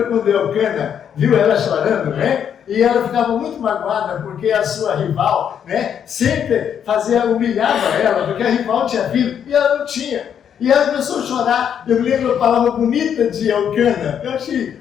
quando Elcana viu ela chorando, né? E ela ficava muito magoada porque a sua rival, né, sempre humilhava ela, porque a rival tinha filho e ela não tinha. E ela começou a chorar. Eu me lembro a palavra bonita de Elcana. Eu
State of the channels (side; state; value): right; quieter; 8.5 dB